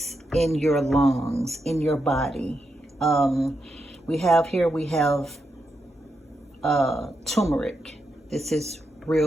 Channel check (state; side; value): normal; both; correlation 0.84